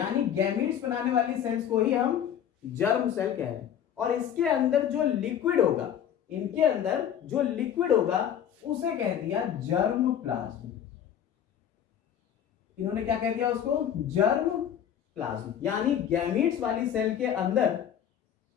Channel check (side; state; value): right; quieter; 9.4 dB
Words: गैमीट्स बनाने वाली सेल्स को ही हम जर्म सेल कह रहे हैं। और इसके अंदर जो लिक्विड होगा, इनके अंदर जो लिक्विड होगा उसे कह दिया जर्म प्लाज्म। इन्होंने क्या कह दिया उसको? Germ plasm. यानी गैमीट्स वाली सेल के अंदर